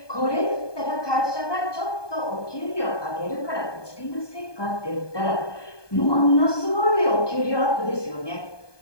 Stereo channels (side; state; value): right; late; 1.2 ms